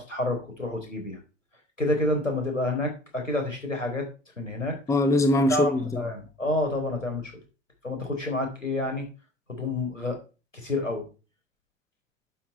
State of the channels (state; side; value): normal; both; correlation 0.47